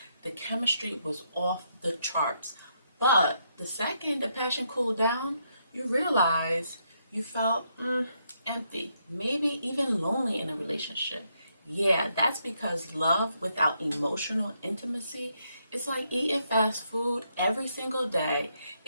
The chemistry was off the charts. But the second the passion cooled down, you realize you felt empty, maybe even lonely in a relationship. Yeah, that's because love without emotional intimacy is like eating fast food every single day.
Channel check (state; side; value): inverted; both; correlation -0.77